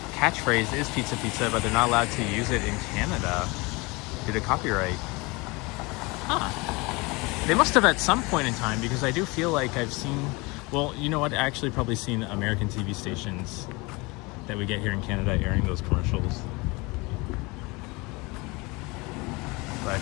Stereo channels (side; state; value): right; quieter; 25.6 dB